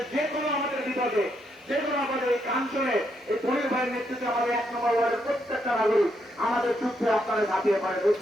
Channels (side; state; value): both; normal; correlation 0.78